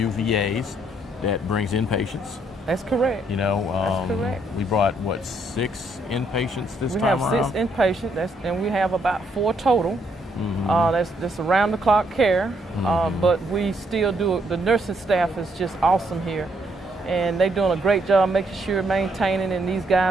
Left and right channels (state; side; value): normal; both; correlation 0.72